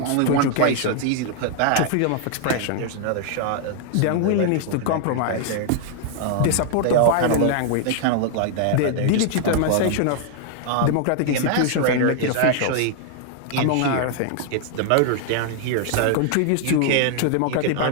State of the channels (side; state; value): both; different; correlation 0.00